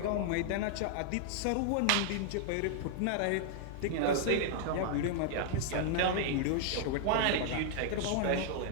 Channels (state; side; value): different; both; correlation -0.01